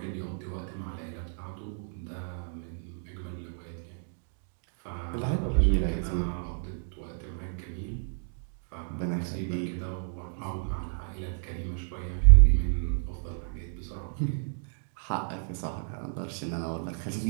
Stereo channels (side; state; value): left; silent; digital silence